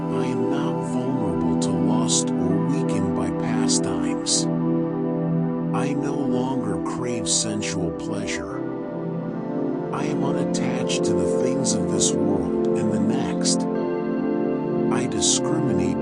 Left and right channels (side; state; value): both; identical; correlation 1.00